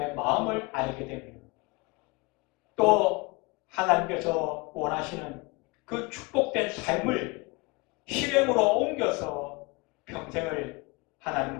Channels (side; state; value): right; quieter; 26.1 dB